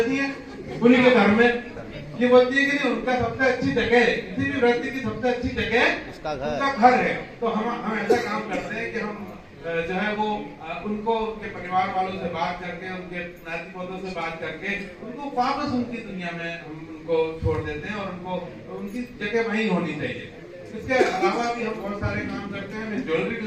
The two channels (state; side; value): identical; both; correlation 1.00